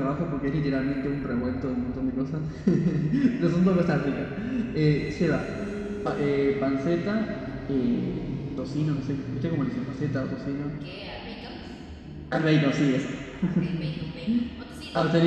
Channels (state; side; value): identical; both; correlation 1.00